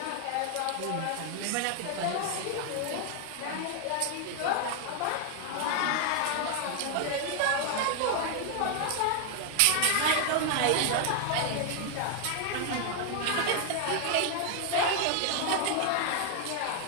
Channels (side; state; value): both; different; correlation 0.00